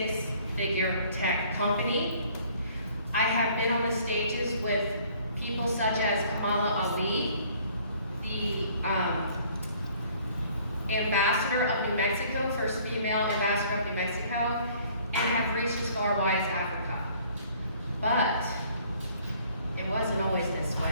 tech company. I have been on the stages with people such as Kamala Ali, the ambassador of New Mexico, first female ambassador of New Mexico, and have reached as far wide as Africa. But it wasn't always this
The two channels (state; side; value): inverted; both; correlation -0.58